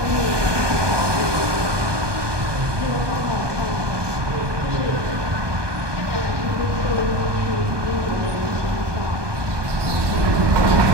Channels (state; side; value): late; left; 1.2 ms